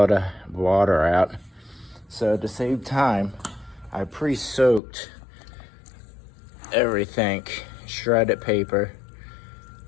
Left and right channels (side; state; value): right; drops out; at 4.8 s